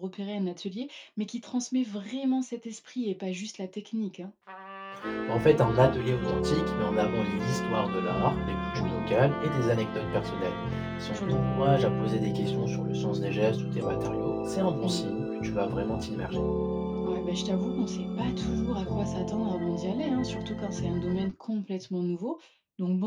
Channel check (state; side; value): identical; both; correlation 1.00